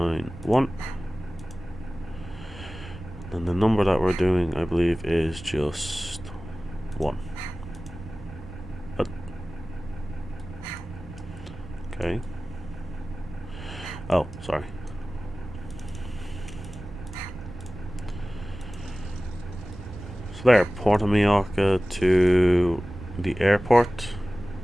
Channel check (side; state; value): left; noise; hum, 25 dB below the sound